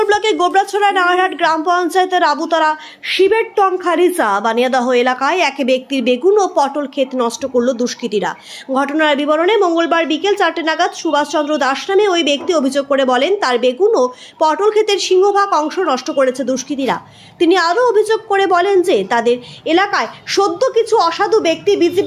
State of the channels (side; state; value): both; identical; correlation 1.00